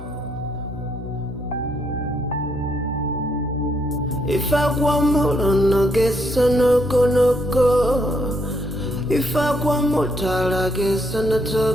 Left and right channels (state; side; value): noise; left; hum, 21 dB below the sound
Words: If I want more, no guess no go. If I want more, I guess I'm